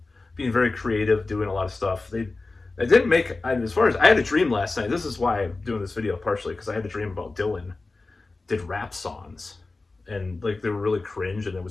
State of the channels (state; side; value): quieter; right; 3.5 dB